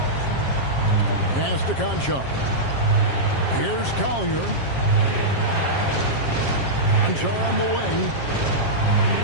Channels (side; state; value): right; late; 7.4 ms